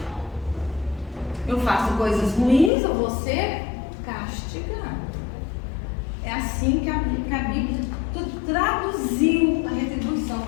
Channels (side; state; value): right; drops out; at 2.7 s